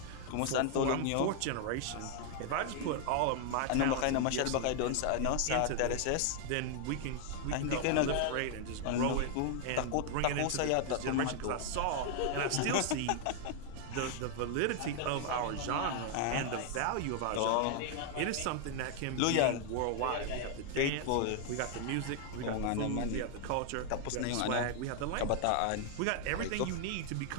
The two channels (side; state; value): both; different; correlation 0.00